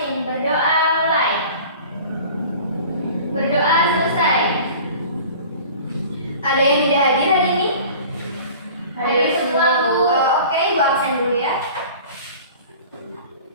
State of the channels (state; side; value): inverted; both; correlation -0.43